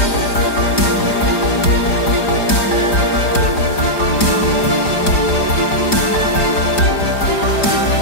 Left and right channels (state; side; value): late; right; 4.9 ms